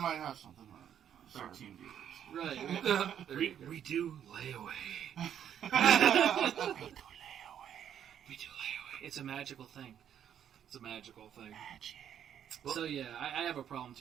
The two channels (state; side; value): quieter; left; 9.4 dB